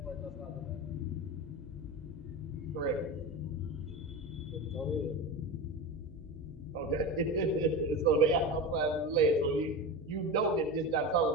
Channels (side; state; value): right; noise; hum, 22 dB below the sound